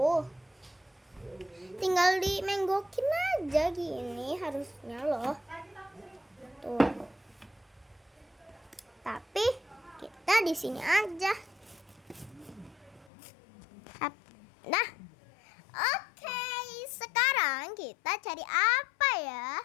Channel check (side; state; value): right; drops out; at 13.1 s